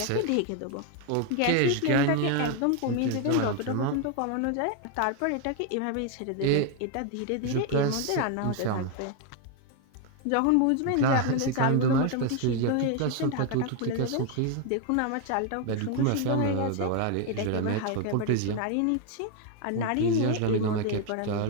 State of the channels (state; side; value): different; both; correlation 0.01